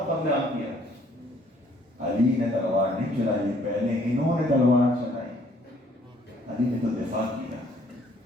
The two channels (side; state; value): both; normal; correlation 0.62